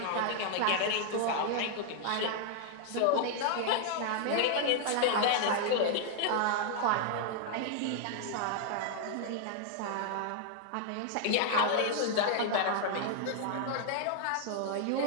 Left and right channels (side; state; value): both; different; correlation 0.00